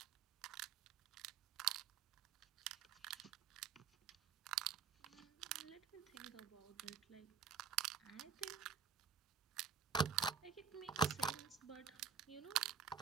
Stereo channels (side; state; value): left; quieter; 7.2 dB